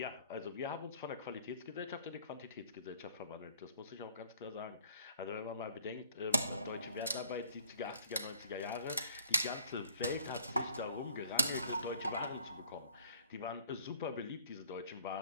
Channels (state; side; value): inverted; both; correlation -0.56